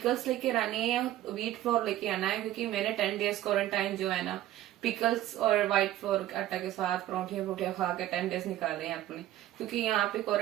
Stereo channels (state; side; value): quieter; left; 13.8 dB